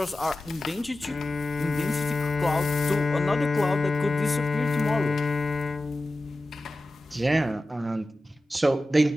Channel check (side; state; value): both; normal; correlation 0.95